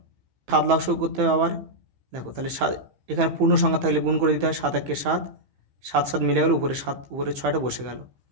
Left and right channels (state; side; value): late; left; 15 ms